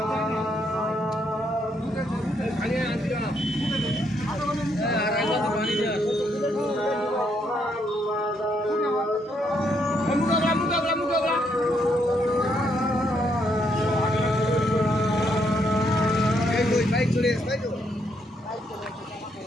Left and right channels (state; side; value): normal; both; correlation 0.74